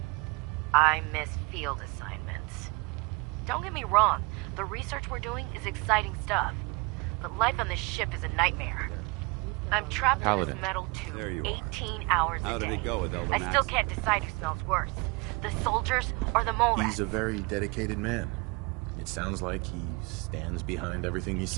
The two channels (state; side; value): quieter; left; 27.7 dB